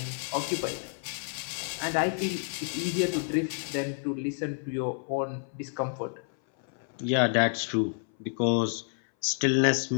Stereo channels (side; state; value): right; silent; 58 dB below the other